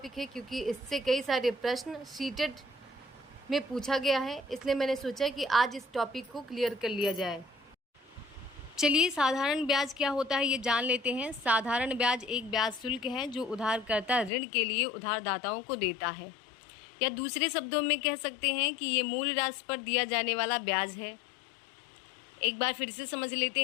है क्योंकि इससे कई सारे प्रश्न सीटेट में पूछा गया है, इसलिए मैंने सोचा कि आज इस टॉपिक को क्लियर कर लिया जाए। चलिए साधारण ब्याज क्या होता है ये जान लेते हैं। साधारण ब्याज एक ब्याज शुल्क है जो उधारकर्ता ऋण के लिए उधारदाताओं को देता है, या दूसरे शब्दों में कह सकते हैं कि ये मूल राशि पर दिया जाने वाला ब्याज है। एक बार फिर से समझ लेते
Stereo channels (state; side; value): drops out; right; at 14.3 s